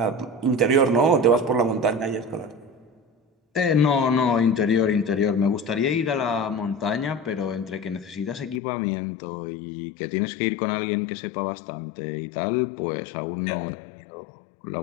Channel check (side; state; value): right; drops out; at 8.6 s